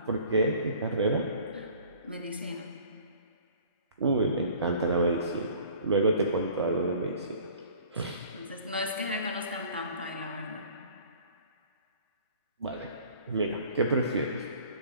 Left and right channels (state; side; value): inverted; both; correlation -0.50